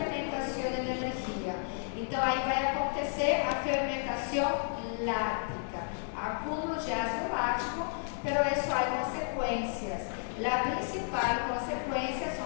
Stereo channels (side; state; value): right; silent; 56 dB below the other